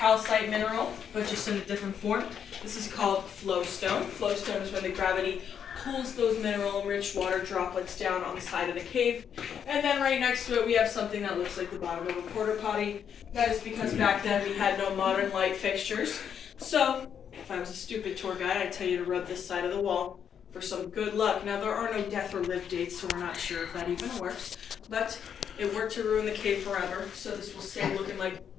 mineral, but just in a different form. This is called flowstone. Flowstone is when the gravity pulls those mineral-rich water droplets down on the side of the cave. And then right next to it, we have something that looks like the bottom of a porta potty. That is because back then we had no modern light fixtures. So, if I was a stupid tour guide, I'd tell you to rub this side of the wall for some good luck. Now, there are no death or live dates, so we're not sure if that even works. But it worked to ruin the cave forever, so this will stay looking like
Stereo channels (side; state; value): right; quieter; 8.1 dB